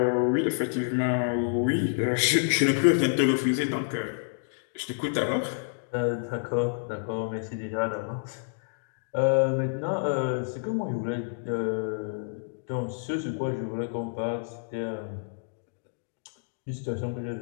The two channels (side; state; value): right; silent; digital silence